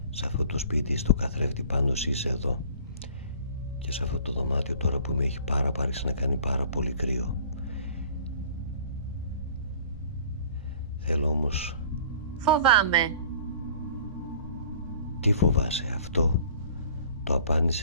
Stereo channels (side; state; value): both; inverted; correlation -0.49